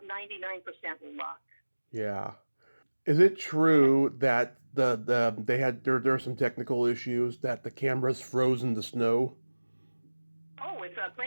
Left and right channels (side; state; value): both; inverted; correlation -1.00